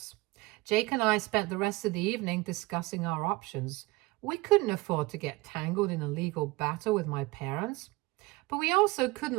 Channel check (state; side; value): quieter; left; 22.2 dB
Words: Jake and I spent the rest of the evening discussing our options. We couldn't afford to get tangled in a legal battle with my parents, but we also